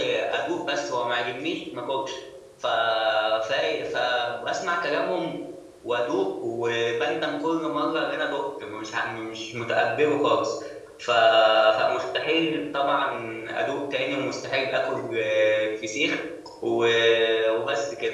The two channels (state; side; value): identical; both; correlation 1.00